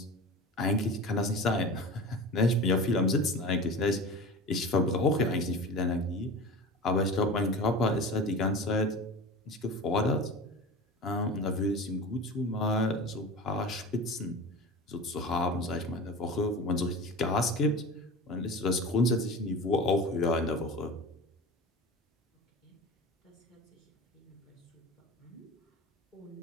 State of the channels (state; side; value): normal; both; correlation 0.33